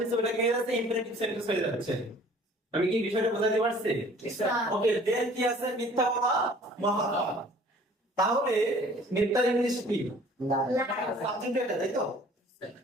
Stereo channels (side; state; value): both; normal; correlation 0.52